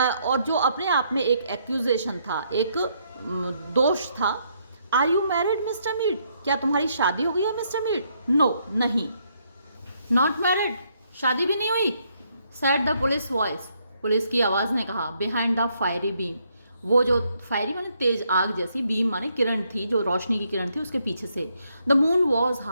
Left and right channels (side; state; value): both; inverted; correlation -0.73